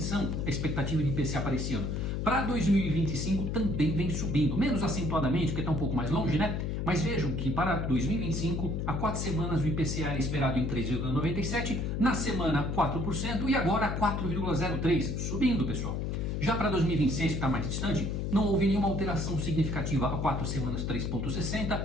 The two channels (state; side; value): noise; left; hum, 1 dB below the sound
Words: a expectativa de IPCA para esse ano. Para 2025 também vem subindo, menos acentuadamente, porque está um pouco mais longe, né? Mas vejam que para 2025, há 4 semanas o IPCA era esperado em 3,97%, na semana 4% e agora 4,03%, subindo, pessoal. Já para 2026, que está mais distante, não houve nenhuma alteração significativa. Há 4 semanas 3,60%,